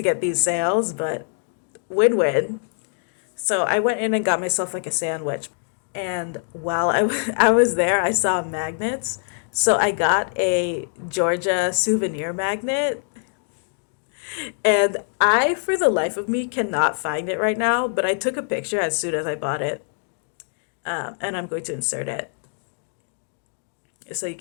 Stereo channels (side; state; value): right; silent; digital silence